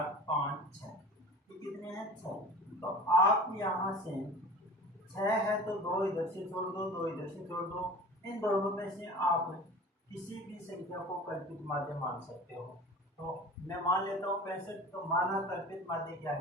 5 6, ये कितने हैं? 6। तो आप यहाँ से 6 है तो 2 इधर से छोड़ दो, 2 इधर से छोड़ दो। इन दोनों में से आप किसी भी संख्या को कल्पित माध्य मान सकते हो। तो मैं मान लेता हूँ 65। तो माना कल्पित माध्य क्या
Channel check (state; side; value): normal; both; correlation 0.39